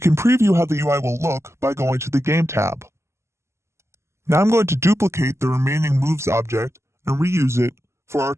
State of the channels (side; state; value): left; late; 0.13 ms